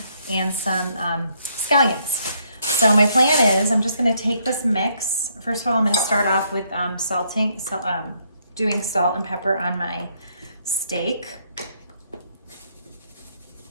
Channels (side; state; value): both; inverted; correlation -0.71